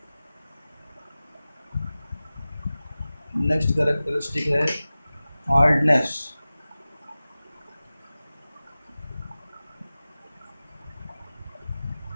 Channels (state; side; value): inverted; both; correlation -0.97